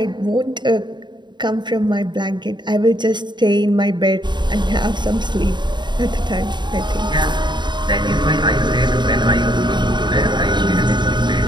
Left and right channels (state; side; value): late; left; 0.22 ms